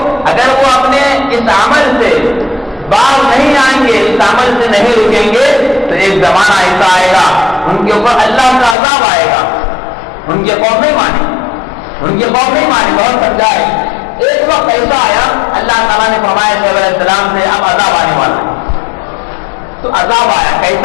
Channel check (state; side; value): drops out; right; at 8.8 s